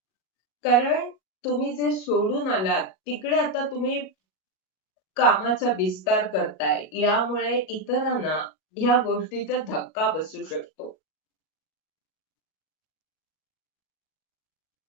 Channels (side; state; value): right; late; 37 ms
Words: कारण तुम्ही जे सोडून आलात, तिकडे आता तुम्ही कामाचा विस्तार करताय. यामुळे इतरांना ह्या गोष्टीचा धक्का बसू शकतो.